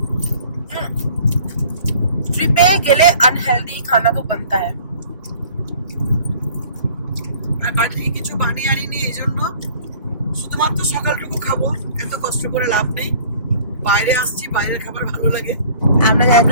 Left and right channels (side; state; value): both; inverted; correlation -0.50